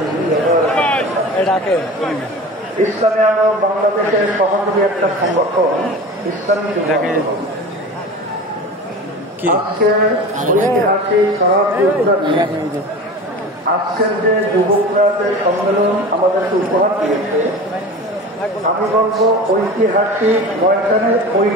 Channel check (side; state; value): both; normal; correlation 0.34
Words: ইসলামী আন্দোলন বাংলাদেশের সহযোগী একটা সংগঠন ইসলামী আজকের যে যুবকরা যে সম্মেলন আমাদেরকে উপহার দিয়েছে, আমি বলবো ঐতিহাসিক ময়দানের